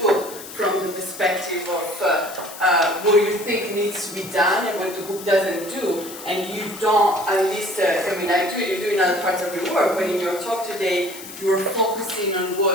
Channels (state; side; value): noise; left; hiss, 14 dB below the sound